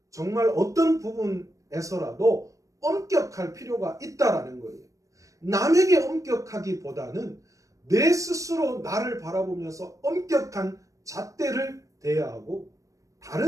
정말 어떤 부분에서라도 엄격할 필요가 있다라는 거예요. 남에게 엄격하기보다는 내 스스로 나를 바라보면서 엄격한 잣대를 대야 하고,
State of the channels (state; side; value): late; left; 0.16 ms